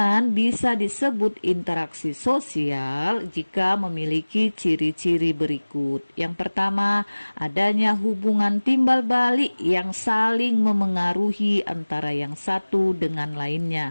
bisa disebut interaksi sosial jika memiliki ciri-ciri berikut. Yang pertama, adanya hubungan timbal balik yang saling memengaruhi antara yang satu dengan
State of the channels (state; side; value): inverted; both; correlation -1.00